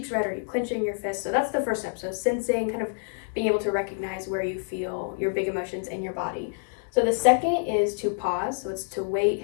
red? Are you clenching your fists? So that's the first step. So sensing, kind of being able to recognize where you feel your big emotions in your body. So the second is to pause. So it's to wait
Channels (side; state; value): right; silent; digital silence